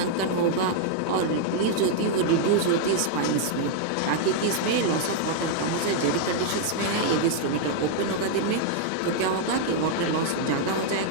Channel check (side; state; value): both; different; correlation -0.01